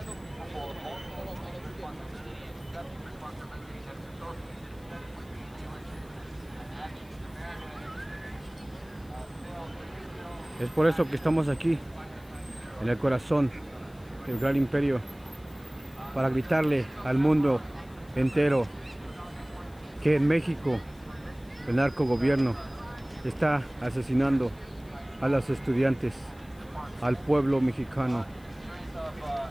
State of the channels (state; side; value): noise; left; hiss, 28 dB below the sound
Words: Es por eso que estamos aquí, en el corazón del gran imperio, para gritarle al mundo entero que en México el narcogobierno está asesinando a los estudiantes, al pueblo mexicano.